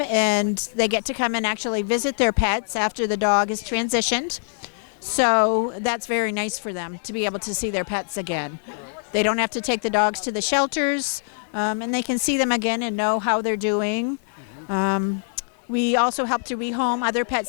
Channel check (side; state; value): right; silent; 63 dB below the other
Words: and they get to come and actually visit their pets after the dog is transitioned. So that's very nice for them to be able to see their pets again. They don't have to take the dogs to the shelters, and they can see them again and know how they're doing. We also help to rehome other